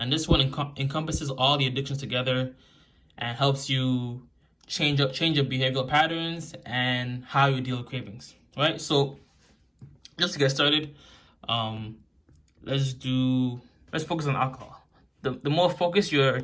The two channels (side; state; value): both; identical; correlation 1.00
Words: this one encompasses all the addictions together and helps you change your behavioral patterns and how you deal with cravings, right? So just to get started, let's focus on alcohol. The more focused your